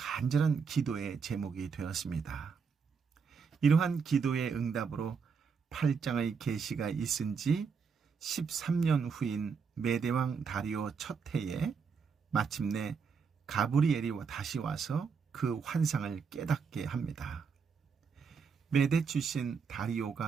기도의 제목이 되었습니다. 이러한 기도의 응답으로 8장의 계시가 있은 지 13년 후인 메대왕 다리오 첫 해에 마침내 가브리엘이 다시 와서 그 환상을 깨닫게 합니다. 메대 출신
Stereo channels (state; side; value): quieter; left; 5.8 dB